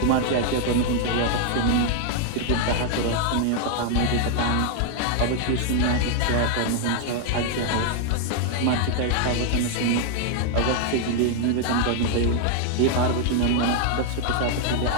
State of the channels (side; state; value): both; different; correlation 0.00